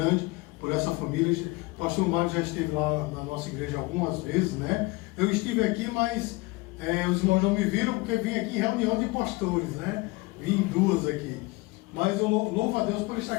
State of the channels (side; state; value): right; quieter; 23.6 dB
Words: por essa família. O pastor Mário já esteve lá na nossa igreja algumas vezes, né? Eu estive aqui, mas os irmãos não me viram porque vim aqui em reunião de pastores, né? Vim em duas aqui. Mas eu louvo a Deus por estar